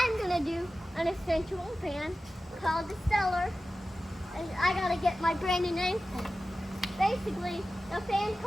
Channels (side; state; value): both; normal; correlation 0.95